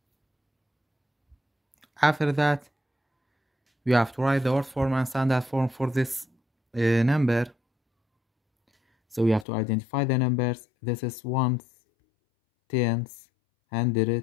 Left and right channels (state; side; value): drops out; right; at 9.5 s